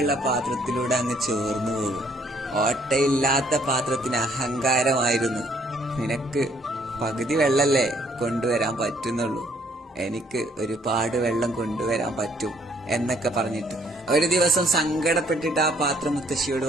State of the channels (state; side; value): normal; both; correlation 0.65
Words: പാത്രത്തിലൂടെ അങ്ങ് ചോർന്നു പോകും. ഓട്ടയില്ലാത്ത പാത്രത്തിന് അഹങ്കാരമായിരുന്നു. നിനക്ക് പകുതി വെള്ളല്ലേ കൊണ്ടുവരാൻ പറ്റുന്നുള്ളൂ, എനിക്ക് ഒരുപാട് വെള്ളം കൊണ്ടുവരാൻ പറ്റും എന്നൊക്കെ പറഞ്ഞിട്ട് ഒരു ദിവസം സങ്കടപ്പെട്ടിട്ട് ആ പാത്രം മുത്തശ്ശിയോട്